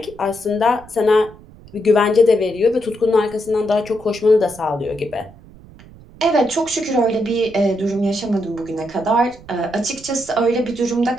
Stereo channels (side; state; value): right; noise; rumble, 21 dB below the sound